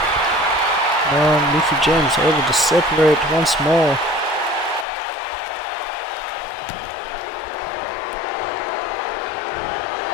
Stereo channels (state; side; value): drops out; right; at 4.9 s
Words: Now Mickey James able to separate once more.